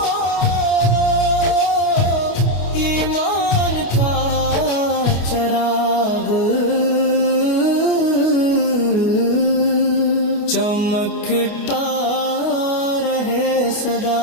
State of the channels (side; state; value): right; late; 28 ms